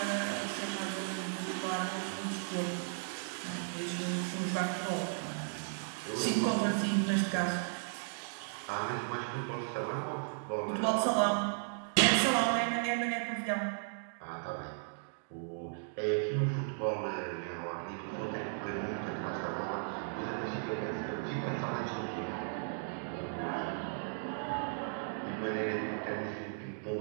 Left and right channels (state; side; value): silent; left; digital silence